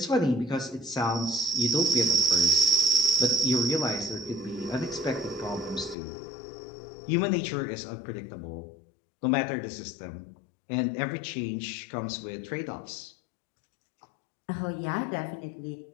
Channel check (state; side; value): drops out; right; at 6.0 s